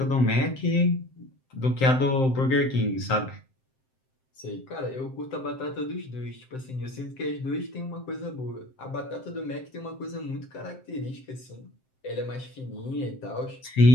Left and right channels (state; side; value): late; right; 7.7 ms